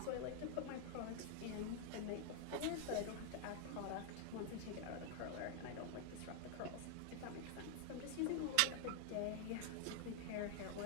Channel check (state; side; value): different; both; correlation 0.00